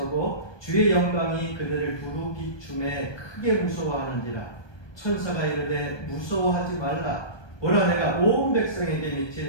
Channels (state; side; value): late; right; 1.2 ms